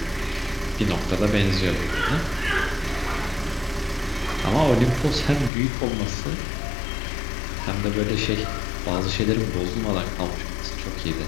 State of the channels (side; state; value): right; drops out; at 5.5 s